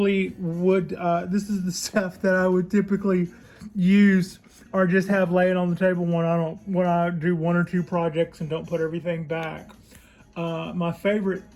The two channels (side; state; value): both; identical; correlation 1.00